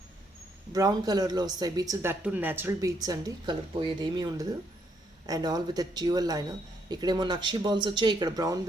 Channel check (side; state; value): both; normal; correlation 0.73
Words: Brown కలర్లో వస్తాయి beads. That too natural beads అండి. కలర్ పోయేది ఏమీ ఉండదు. And all with a dual liner. ఇక్కడేమో నక్షి బాల్స్ వచ్చాయి, ఇక్కడ బ్రౌన్